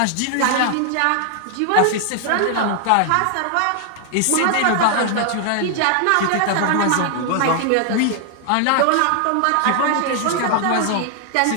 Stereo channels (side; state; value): both; different; correlation 0.00